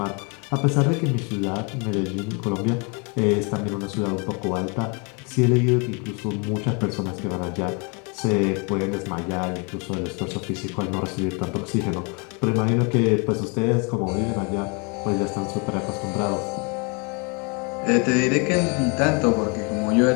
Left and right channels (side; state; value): right; quieter; 33.6 dB